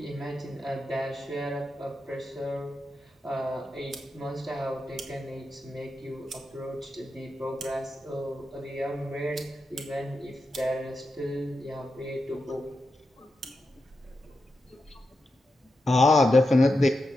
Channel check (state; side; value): normal; both; correlation 0.88